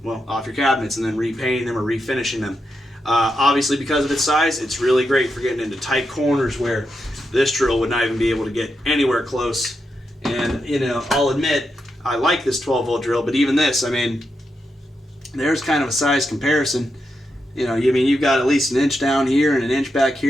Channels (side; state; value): both; normal; correlation 0.85